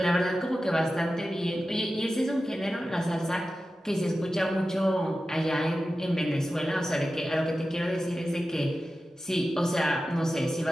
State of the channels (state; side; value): normal; both; correlation 0.93